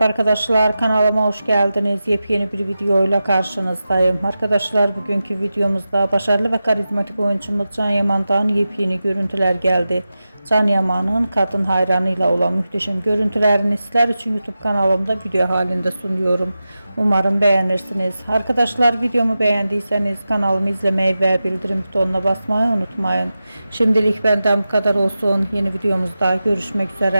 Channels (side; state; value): both; inverted; correlation -0.93